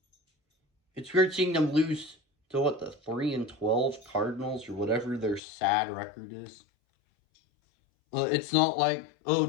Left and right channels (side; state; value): right; drops out; at 5.4 s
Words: It's weird seeing them lose to the 3-12 Cardinals or whatever their sad record is. It's not like,